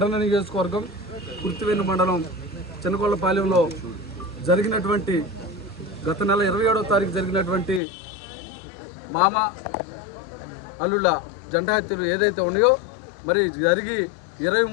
నియోజకవర్గం కుర్తివేణి మండలం చిన్నకొల్లపాలెంలో జరిగినటువంటి గత నెల 27వ తారీఖు జరిగినటువంటి మామ అల్లుళ్ళ జెండా హత్యలు ఏదైతే ఉన్నాయో మరి జరిగి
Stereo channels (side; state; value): right; drops out; at 7.8 s